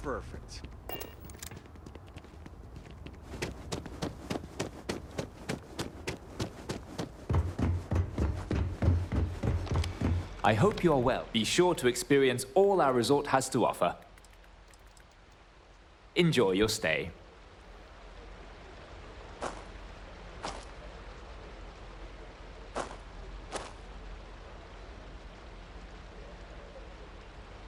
I hope you are well. Be sure to experience all our resort has to offer. Enjoy your stay.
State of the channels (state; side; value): identical; both; correlation 1.00